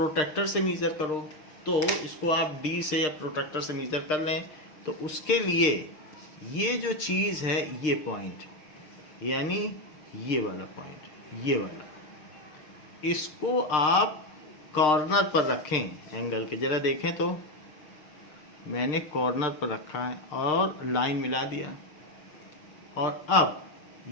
से मीजर करो, तो इसको आप डी से या प्रोटेक्टर से मीजर कर लें। तो उसके लिए ये जो चीज़ है, ये पॉइंट यानी ये वाला पॉइंट, ये वाला, इसको आप कॉर्नर पर रखें एंगल के। ज़रा देखें तो मैंने कॉर्नर पर रखा है और लाइन मिला दिया, और अब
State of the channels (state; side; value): late; right; 6.6 ms